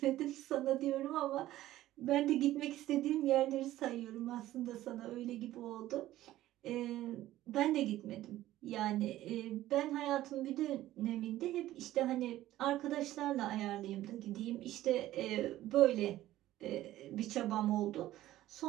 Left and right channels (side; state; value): left; quieter; 14.7 dB